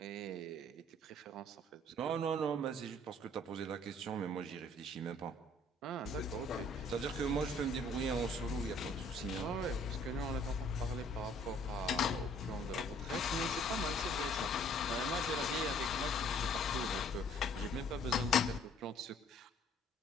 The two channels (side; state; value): both; normal; correlation 0.58